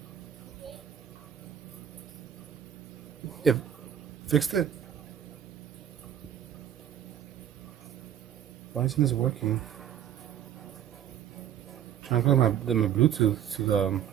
Yeah, fixed it. Why isn't this working? I'm trying to connect my Bluetooth to the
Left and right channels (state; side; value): quieter; left; 9.9 dB